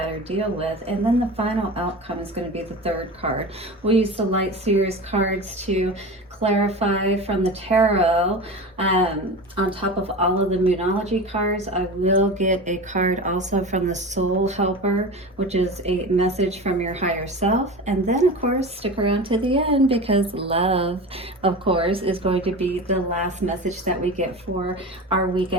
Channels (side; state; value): both; normal; correlation 0.30